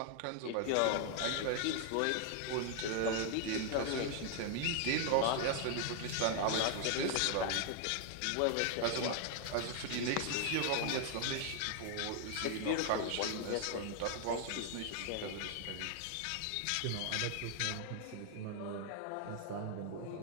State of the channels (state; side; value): different; both; correlation 0.00